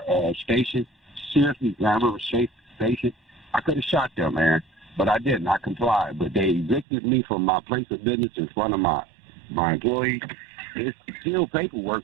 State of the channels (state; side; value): drops out; left; at 6.9 s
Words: station, seriously, Grand River station, I could have shot them, man, but I didn't. I complied. But they evicted me from my place of business in front of my employees. It's still paperwork,